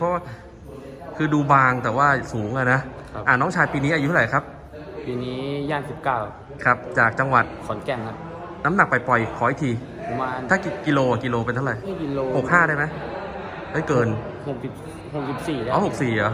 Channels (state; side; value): identical; both; correlation 1.00